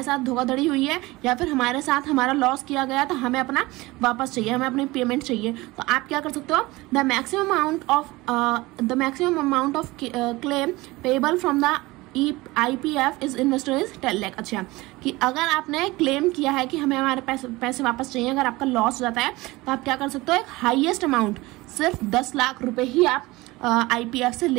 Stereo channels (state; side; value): quieter; left; 20.9 dB